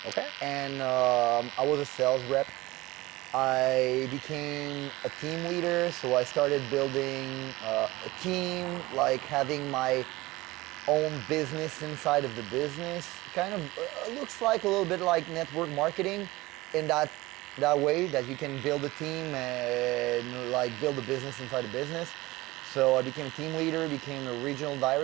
Okay. And I was a sales rep. I became a team leader, so I started building a team, like having my own business inside of the business. Kind of looks like a little bit like network marketing in that way, that you can build a team and like build a business inside a business. So I became a team leader, became a regional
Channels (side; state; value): left; quieter; 20.0 dB